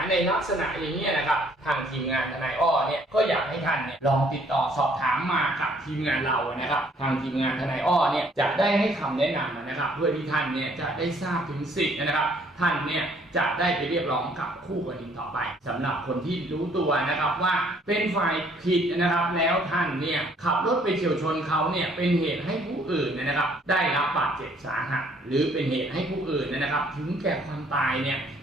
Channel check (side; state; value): both; normal; correlation 0.62